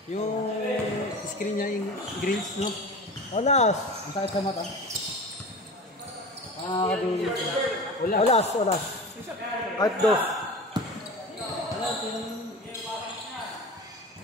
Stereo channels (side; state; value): both; normal; correlation 0.33